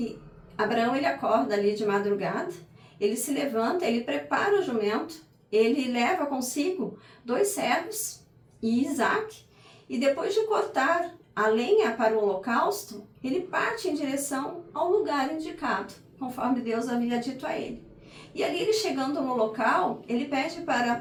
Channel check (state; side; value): identical; both; correlation 1.00